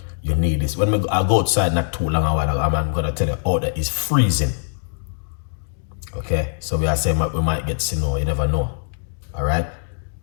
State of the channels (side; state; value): right; silent; digital silence